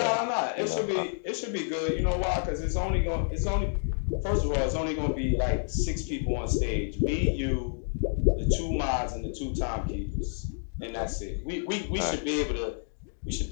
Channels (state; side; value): silent; right; digital silence